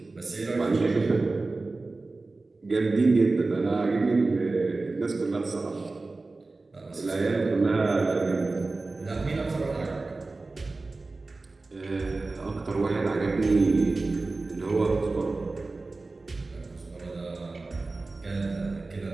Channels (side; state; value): left; quieter; 3.5 dB